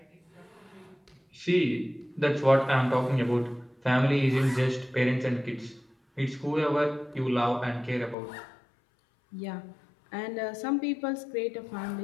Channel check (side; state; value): right; drops out; at 8.2 s